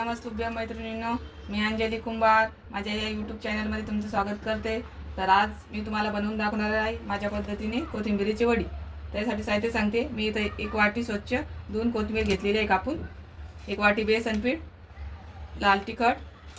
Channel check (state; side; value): identical; both; correlation 1.00